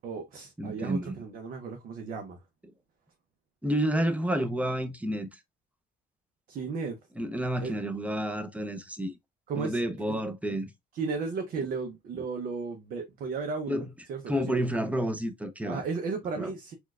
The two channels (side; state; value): both; normal; correlation 0.67